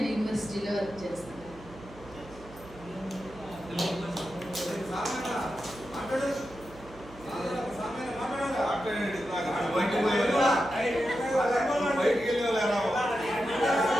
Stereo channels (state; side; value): noise; right; hum, 19 dB below the sound